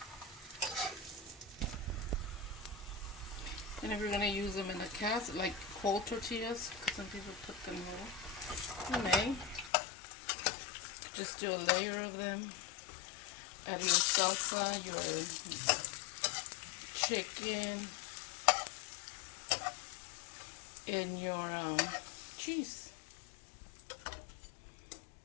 And if you're going to use them in a cast, like cold tortillas, because some people put them raw, you may just do a layer of them. Add your salsa, chicken and your cheese.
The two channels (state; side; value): drops out; right; at 9.7 s